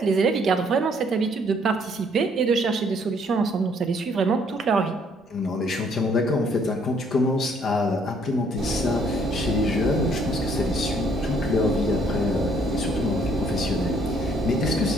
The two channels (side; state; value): both; normal; correlation 0.65